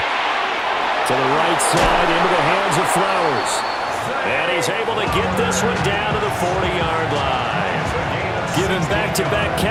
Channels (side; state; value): both; identical; correlation 1.00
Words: the right side, into the hands of Flowers. And he's able to get this one down to the 40-yard line. Giving back-to-back